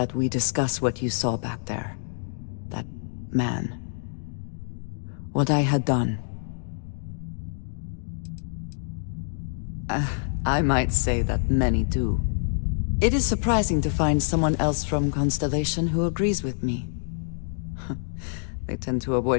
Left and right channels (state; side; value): silent; right; digital silence